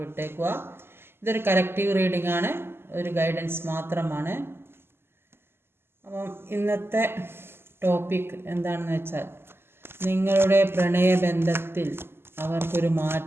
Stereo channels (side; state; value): left; late; 0.11 ms